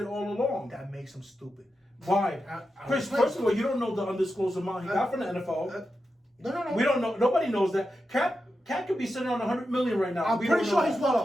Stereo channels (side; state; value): both; normal; correlation 0.89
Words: all along. That makes him stupid. Why? Chris, first of all, you don't know the undisclosed amount he got from the NFL. No. We don't know. Nobody knows that. Cat could be sitting on $100 million right now. I'm pretty sure he's well